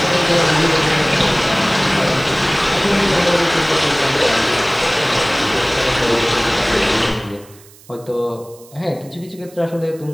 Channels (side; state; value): right; noise; hiss, 24 dB below the sound